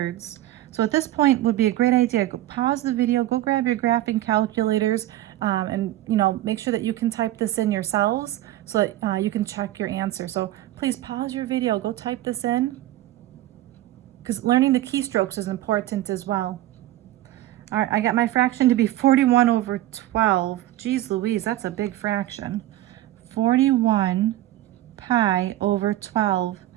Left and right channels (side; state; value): left; quieter; 14.8 dB